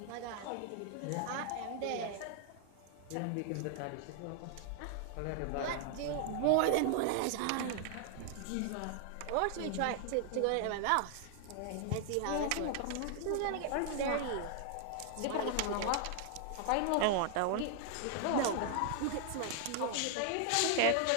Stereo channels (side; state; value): both; different; correlation 0.00